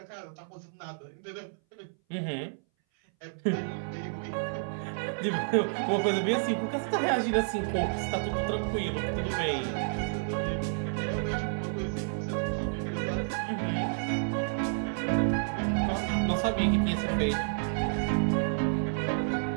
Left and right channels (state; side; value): silent; left; 58 dB below the other